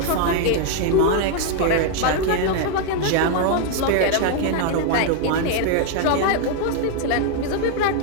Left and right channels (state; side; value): different; both; correlation 0.00